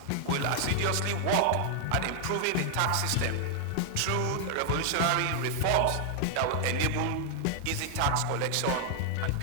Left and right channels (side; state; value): both; different; correlation 0.00